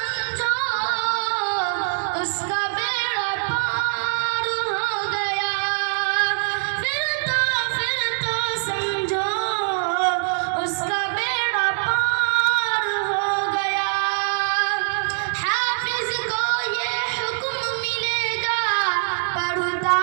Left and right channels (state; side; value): silent; left; digital silence